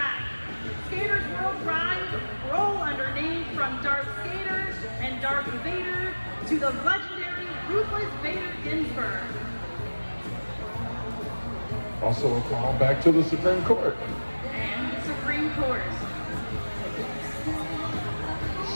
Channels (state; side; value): inverted; both; correlation -1.00